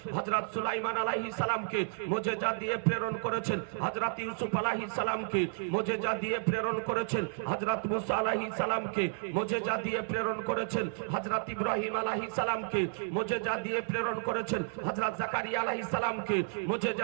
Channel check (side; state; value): left; silent; 56 dB below the other